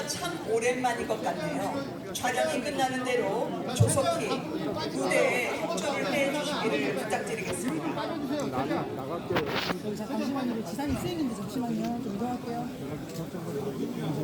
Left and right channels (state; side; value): identical; both; correlation 1.00